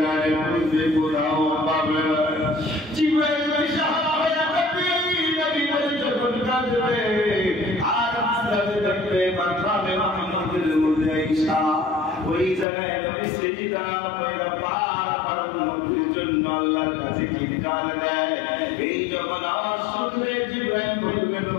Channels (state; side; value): drops out; right; at 12.7 s